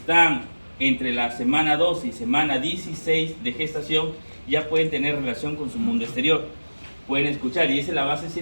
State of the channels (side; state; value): both; inverted; correlation -1.00